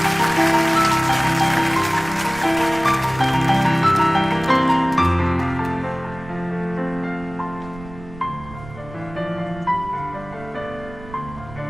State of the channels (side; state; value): right; noise; rumble, 17 dB below the sound